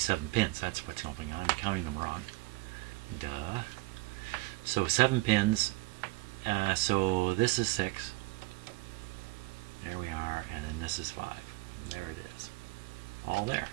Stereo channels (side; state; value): left; quieter; 21.9 dB